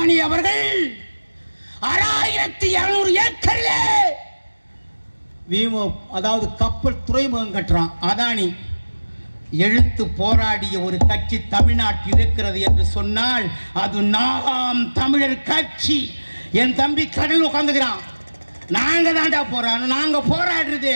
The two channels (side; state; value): both; inverted; correlation -1.00